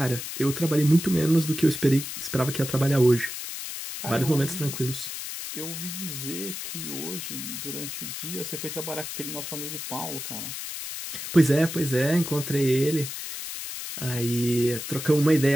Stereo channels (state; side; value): noise; left; hiss, 7 dB below the sound